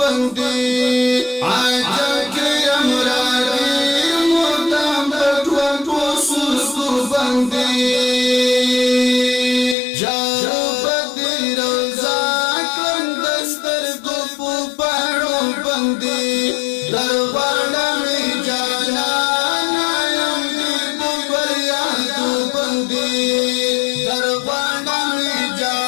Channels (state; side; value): drops out; right; at 9.8 s